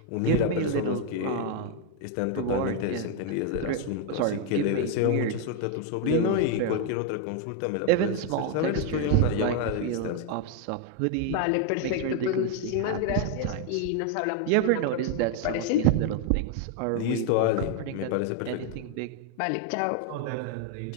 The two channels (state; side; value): different; both; correlation 0.00